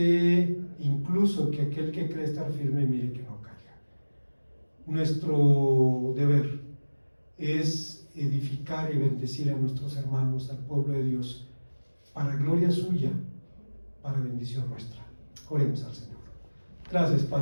incluso que aquel que cree estar firme, mire que no caiga. Nuestro deber es edificar y bendecir a nuestros hermanos, al pueblo de Dios, para gloria suya, para bendición nuestra. Oremos al Señor. Gracias,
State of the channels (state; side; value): inverted; both; correlation -1.00